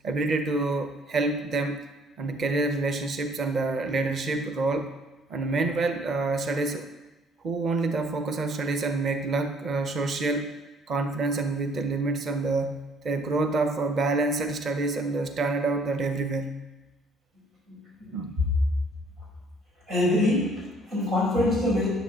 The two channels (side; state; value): both; normal; correlation 0.60